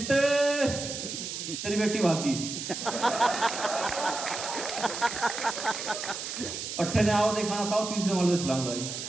तेरी बेटी भागी। पट्टे ने आओ देखा ना था, तीसरे माले पे छलांग लगाई।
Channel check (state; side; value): noise; right; hiss, 6 dB below the sound